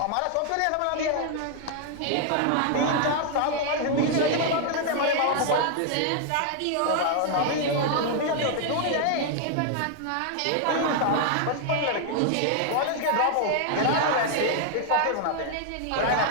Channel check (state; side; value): different; both; correlation 0.00